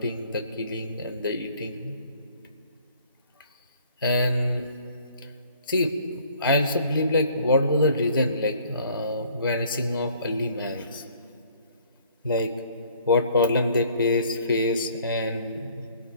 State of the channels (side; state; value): both; inverted; correlation -0.58